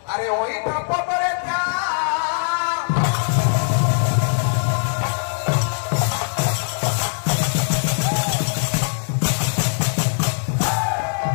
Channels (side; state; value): right; silent; digital silence